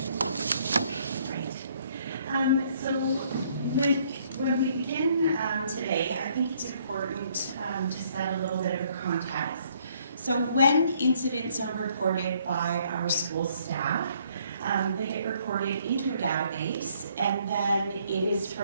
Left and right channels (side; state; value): both; inverted; correlation -0.65